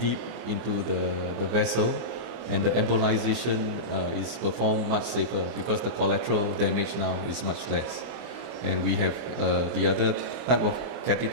into the vessel, and the embolization is performed much safer because the collateral damage now is much less. And we have the other type of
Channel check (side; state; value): left; late; 24 ms